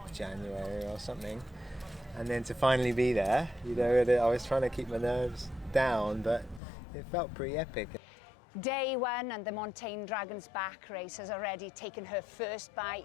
January or something, and then to finally be there, you know, I was trying to keep my nerves down, but it felt pretty epic. Day one and the Montane Dragon's Back race has already taken her first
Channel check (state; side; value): drops out; right; at 6.6 s